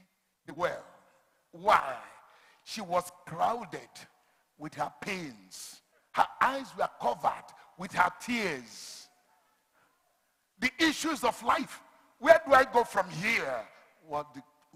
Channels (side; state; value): both; identical; correlation 1.00